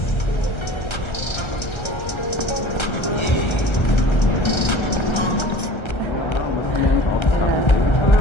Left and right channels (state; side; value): late; right; 1.3 ms